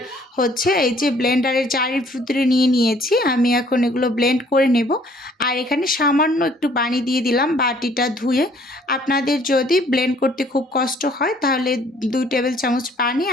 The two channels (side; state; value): both; normal; correlation 0.59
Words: এই যে ব্লেন্ডারের জারের ভিতরে নিয়েছি, আমি এখন এগুলো ব্লেন্ড করে নেব। আর এখানে সামান্য একটু পানি দিয়ে দিলাম বাটিটা ধুয়ে। আপনাদের যদি ব্লেন্ড করতে খুব কষ্ট হয় তাহলে 2 টেবিল চামচ পানি